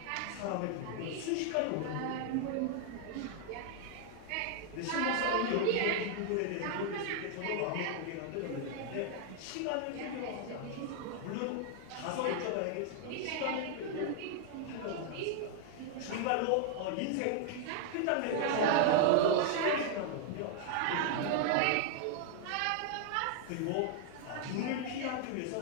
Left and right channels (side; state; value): both; different; correlation 0.00